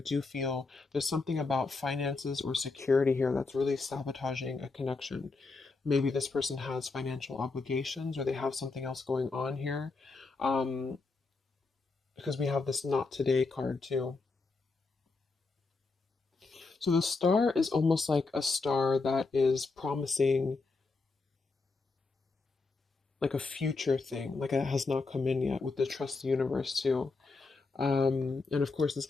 feel there's something about finances or security here that's really sabotaging a connection. Maybe this person has financial obligations or they have something else going on here. Because we have this not today card too. So the star is almost like a star that is promising like a future thing, like it has not come in yet with the trust the universe too. And of course, it's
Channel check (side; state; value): right; quieter; 4.0 dB